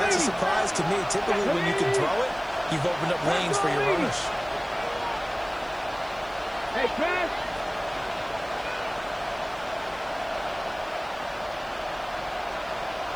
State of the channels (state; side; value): noise; right; hiss, 27 dB below the sound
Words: that's a surprise to me. Typically, when you can throw it, you've opened up lanes for your runners. Hey, Chris.